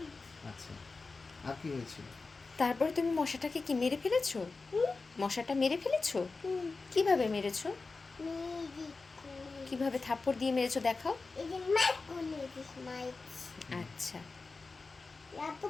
আচ্ছা, আর কি হয়েছিল? তারপরে তুমি মশাটাকে কি মেরে ফেলেছো? মশাটা মেরে ফেলেছো? কিভাবে মেরেছো? মেদি কিভাবে থাপ্পড় দিয়ে মেরেছো দেখাও। এদি মাইক কোনে দিস মাইক আচ্ছা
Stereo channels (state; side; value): quieter; right; 4.0 dB